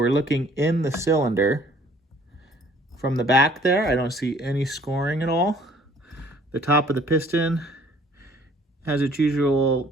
looking in the cylinder. From the back there, I don't see any scoring at all. The top of the piston has its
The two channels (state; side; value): normal; both; correlation 0.57